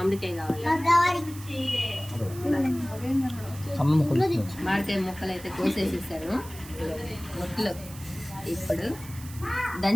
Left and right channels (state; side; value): noise; right; hiss, 17 dB below the sound